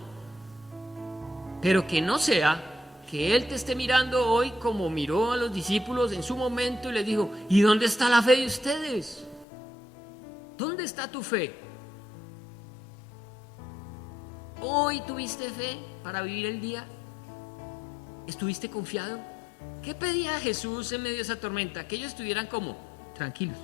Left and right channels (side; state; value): right; drops out; at 9.5 s